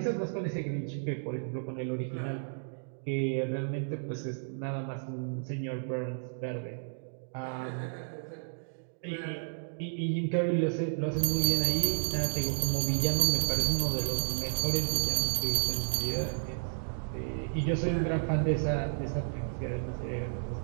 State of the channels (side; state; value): left; silent; digital silence